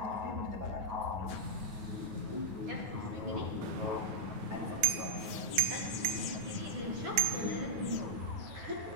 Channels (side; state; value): left; late; 10 ms